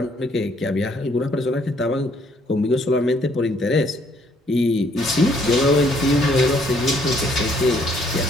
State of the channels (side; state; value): both; normal; correlation 0.65